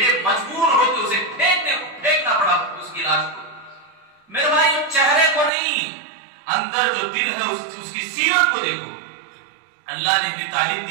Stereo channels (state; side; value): drops out; left; at 5.5 s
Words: مجبور ہو کے اسے پھینکنا پڑا اس کی لاش کو. میرے بھائی چہرے کو نہیں، اندر جو دل ہے اس کی سیرت کو دیکھو. اللہ نے بھی تعلیم